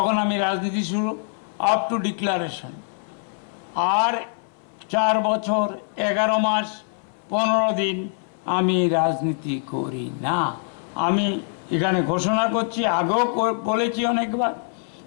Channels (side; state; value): right; silent; 63 dB below the other